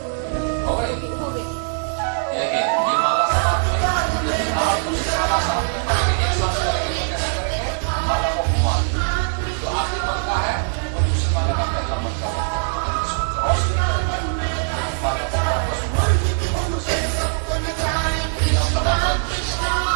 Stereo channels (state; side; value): silent; left; 60 dB below the other